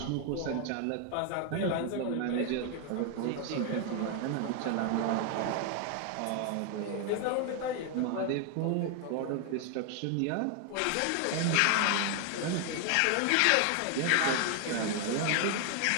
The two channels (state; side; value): different; both; correlation 0.00